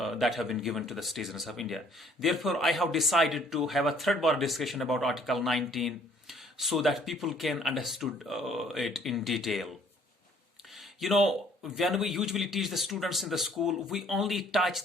have been given to the citizens of India. Therefore, I have decided to have a third bar discussion about Article 19 so that people can understand it in detail. You know, when we usually teach the students in the school, we only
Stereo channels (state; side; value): normal; both; correlation 0.60